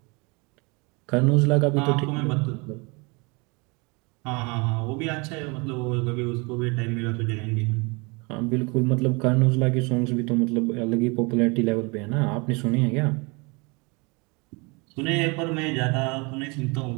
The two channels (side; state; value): left; quieter; 29.0 dB